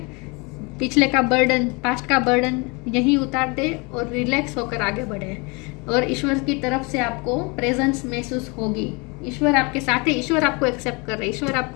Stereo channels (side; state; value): right; quieter; 29.3 dB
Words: पिछले का बर्डन, पास्ट का बर्डन यहीं उतार दे और रिलैक्स होकर आगे बढ़े। और ईश्वर की तरफ से आपको प्रेजेंस महसूस होगी। ईश्वर आपके साथ है, ईश्वर आपको एक्सेप्ट कर रहे हैं, ईश्वर